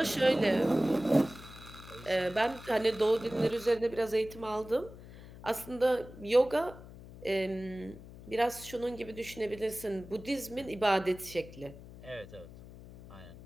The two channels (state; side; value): noise; left; hum, 17 dB below the sound